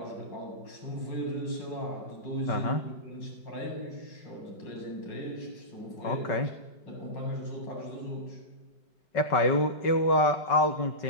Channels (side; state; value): right; late; 5.3 ms